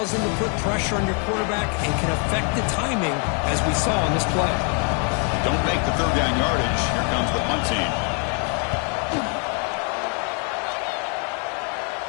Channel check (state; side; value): quieter; right; 39.1 dB